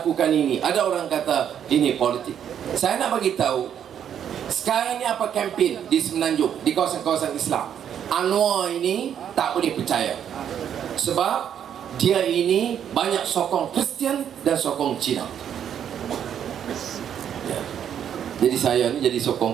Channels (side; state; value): left; quieter; 9.1 dB